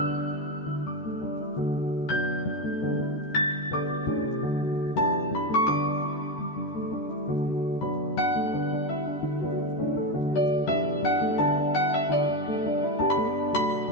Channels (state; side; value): late; right; 13 ms